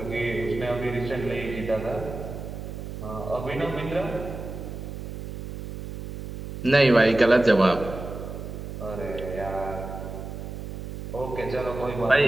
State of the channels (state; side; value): noise; right; hum, 8 dB below the sound